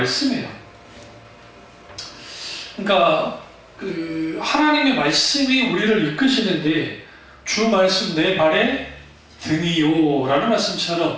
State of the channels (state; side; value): identical; both; correlation 1.00